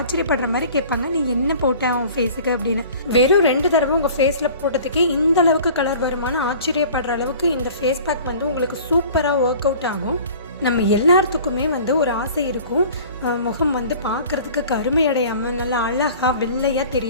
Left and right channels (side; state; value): both; inverted; correlation -0.45